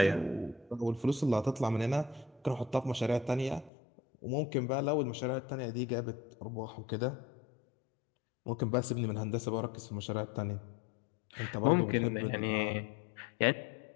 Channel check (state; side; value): drops out; right; at 3.7 s